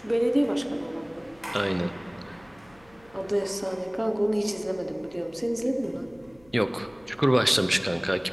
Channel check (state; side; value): noise; left; hum, 28 dB below the sound